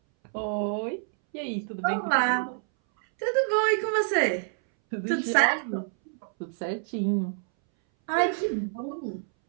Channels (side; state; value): left; silent; 60 dB below the other